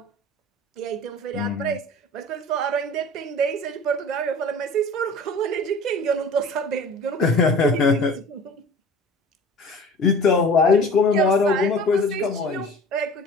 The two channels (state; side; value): normal; both; correlation 0.42